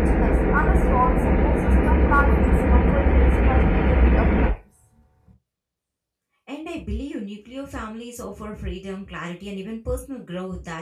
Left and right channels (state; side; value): identical; both; correlation 1.00